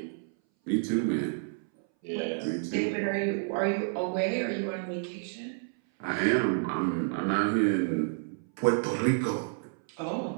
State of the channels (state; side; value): silent; left; 58 dB below the other